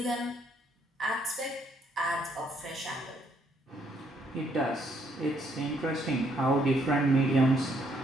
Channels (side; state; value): both; normal; correlation 0.70